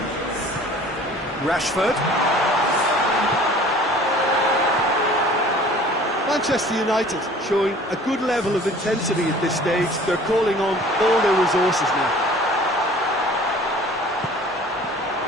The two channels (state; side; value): normal; both; correlation 0.48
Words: Rashford. Manchester United showing a good level of intensity at this stage. They're calling on all their resources now.